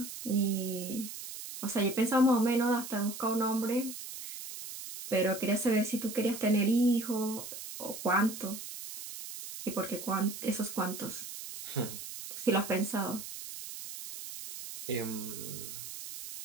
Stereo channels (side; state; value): right; noise; hiss, 10 dB below the sound